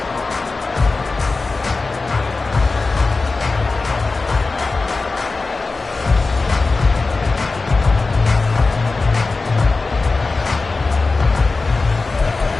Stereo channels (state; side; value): quieter; right; 3.8 dB